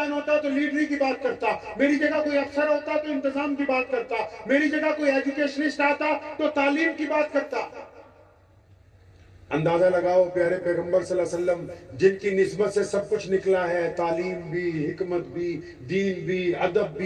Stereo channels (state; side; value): identical; both; correlation 1.00